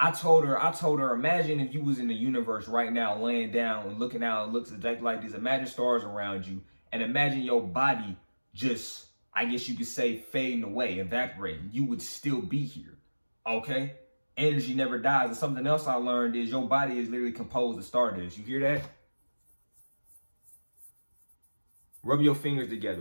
told her, imagine if you was in the universe right now, laying down and looking out, it looks exactly like this. Imagine stars around you and imagine your body just, I guess you could say, fading away, evaporating. You would still be here, okay? Energy never dies. And something else I learned is your body is literally composed of stardust. You hear that? Rub your fingers together.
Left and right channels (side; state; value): both; inverted; correlation -1.00